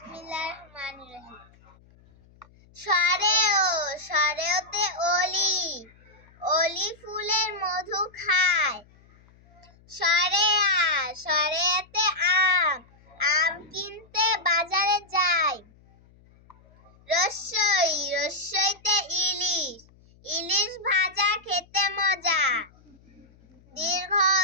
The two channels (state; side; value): noise; left; hum, 28 dB below the sound